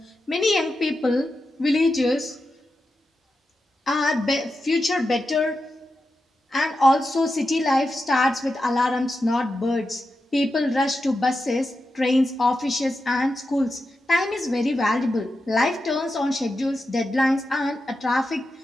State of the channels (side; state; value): both; normal; correlation 0.89